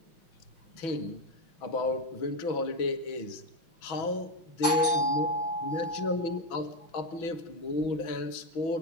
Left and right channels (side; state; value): right; late; 5.6 ms